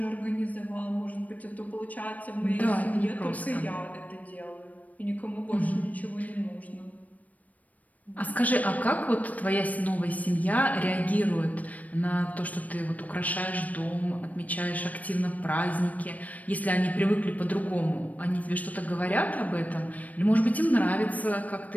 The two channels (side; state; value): right; late; 0.072 ms